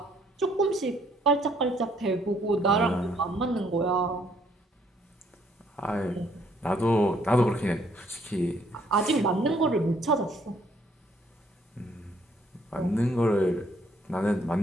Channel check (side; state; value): both; normal; correlation 0.66